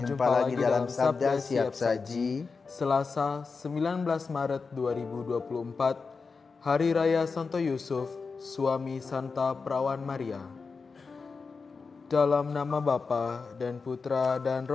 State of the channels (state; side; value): quieter; right; 4.7 dB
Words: lagi dalam Sabda Siap Saji. Selasa 19 Maret 2024, Hari Raya Santo Yusuf, suami Santa Perawan Maria. Dalam nama Bapa dan Putra dan